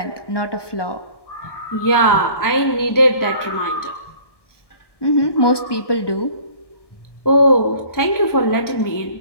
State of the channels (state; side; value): late; right; 1.2 ms